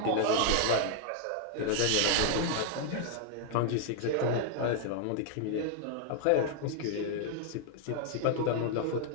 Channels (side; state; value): both; different; correlation 0.00